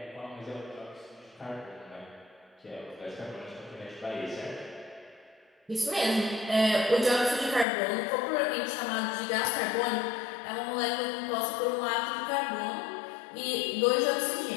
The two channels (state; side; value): drops out; right; at 7.7 s